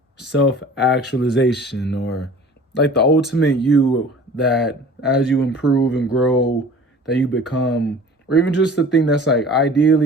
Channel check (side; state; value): both; normal; correlation 0.45